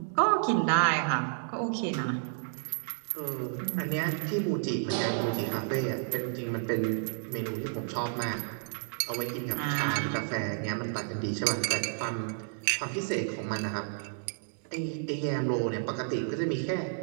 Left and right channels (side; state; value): left; silent; digital silence